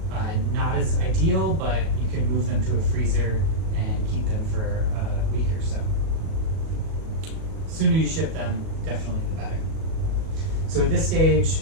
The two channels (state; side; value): late; left; 37 ms